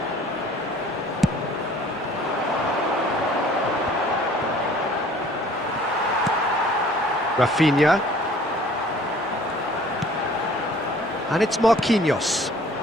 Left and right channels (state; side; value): normal; both; correlation 0.53